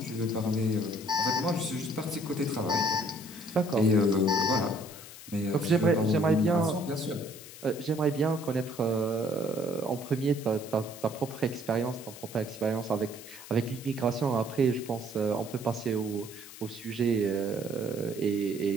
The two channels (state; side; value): noise; left; hiss, 15 dB below the sound